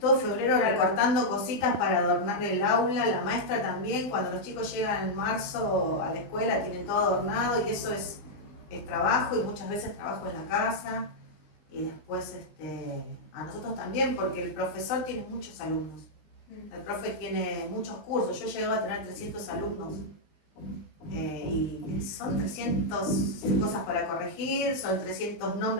todo febrero recortando cositas para adornar el aula, la maestra también, cuando los chicos llegan en marzo a la escuela tienen todo adornado y eso es trabajo, y muchas veces trabajo en la casa, y después a nosotros también, porque el profesor tiene muchos alumnos, el profe tiene muchos cursos, yo llego a tener 300 alumnos. Y son 300 cosas para corregir, son 300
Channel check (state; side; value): late; right; 19 ms